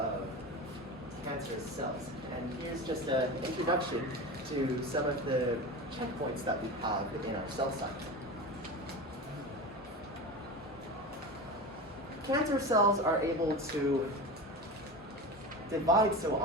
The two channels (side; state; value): both; normal; correlation 0.26